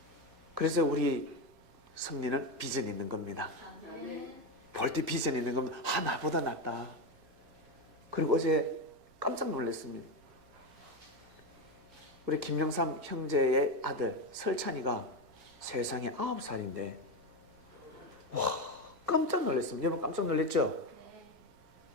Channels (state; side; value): noise; right; rumble, 27 dB below the sound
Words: 그래서 우리 성리는 비전이 있는 겁니다. 볼 때 비전이 있는 겁니다. 나보다 낫다. 그리고 어제 깜짝 놀랐습니다. 우리 김영삼 형제의 아들 설찬이가 세상에 9살인데 와 깜짝 놀랐습니다. 여러분 깜짝 놀랐죠?